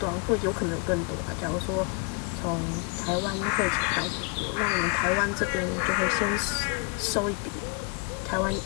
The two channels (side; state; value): right; quieter; 33.9 dB